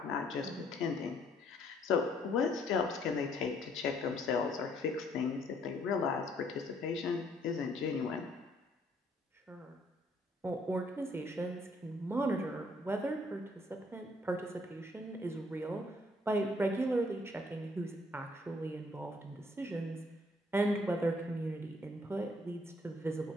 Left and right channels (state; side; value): normal; both; correlation 0.65